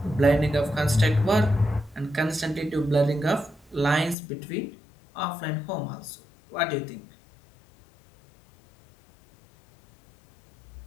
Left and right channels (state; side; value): drops out; right; at 4.2 s